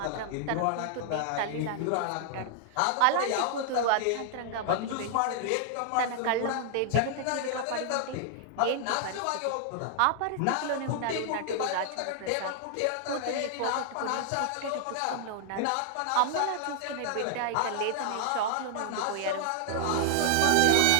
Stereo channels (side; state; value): both; different; correlation -0.01